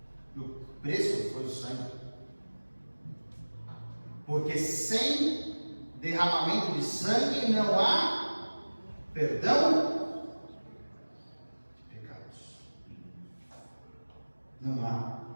E o preço foi o sangue. Porque sem derramamento de sangue não há perdão de pecados. Não há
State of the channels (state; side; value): inverted; both; correlation -1.00